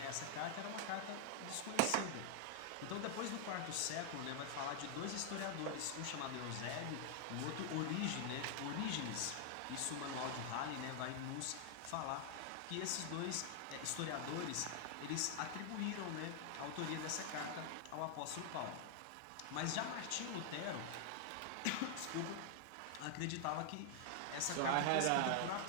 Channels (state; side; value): different; both; correlation 0.00